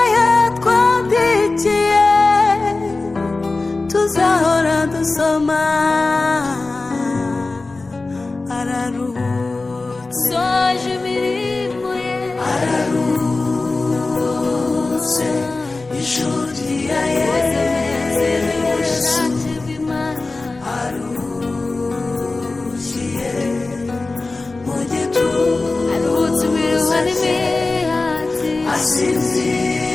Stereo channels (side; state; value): right; quieter; 3.4 dB